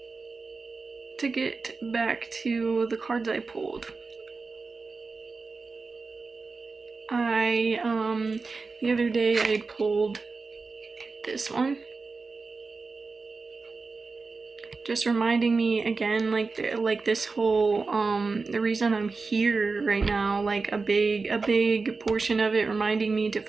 to get back to the cards I pulled, the other day I pulled this one, just reminding me again, like this whole the reason I'm here right now, like a big portion of it reminding me to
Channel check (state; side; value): quieter; left; 4.2 dB